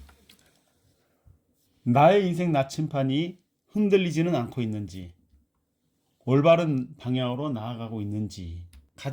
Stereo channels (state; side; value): identical; both; correlation 1.00